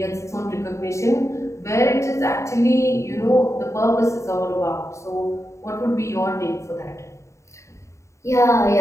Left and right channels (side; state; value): right; late; 0.14 ms